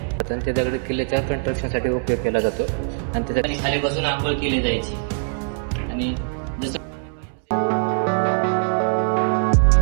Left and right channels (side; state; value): left; silent; 64 dB below the other